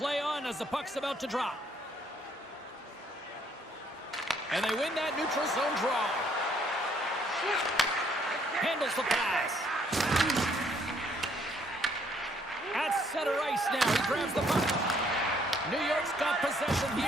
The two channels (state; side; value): normal; both; correlation 0.67